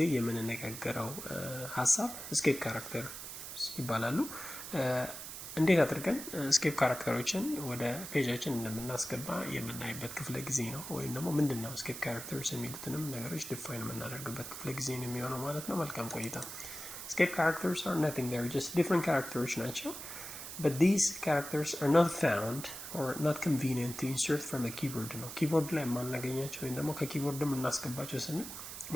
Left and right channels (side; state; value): right; noise; hiss, 9 dB below the sound